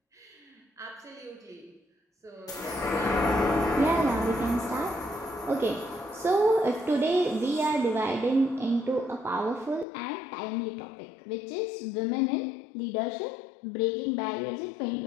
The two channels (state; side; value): drops out; right; at 9.9 s